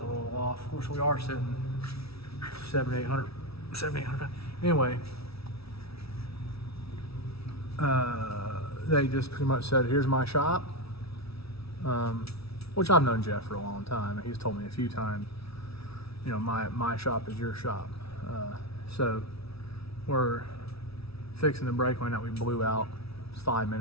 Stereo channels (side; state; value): right; late; 0.76 ms